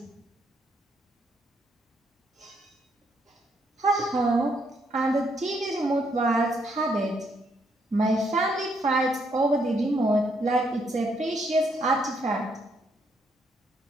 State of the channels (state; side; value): normal; both; correlation 0.73